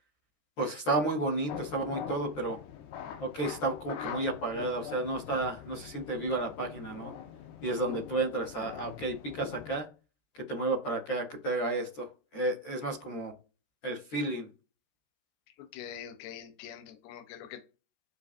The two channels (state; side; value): late; right; 13 ms